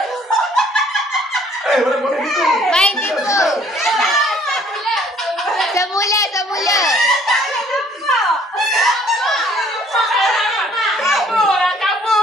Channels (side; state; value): both; normal; correlation 0.58